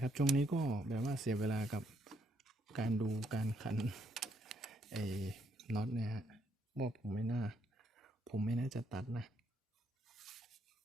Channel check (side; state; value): both; normal; correlation 0.73